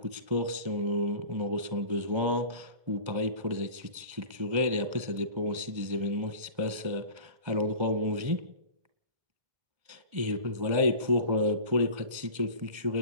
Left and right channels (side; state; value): left; late; 1.3 ms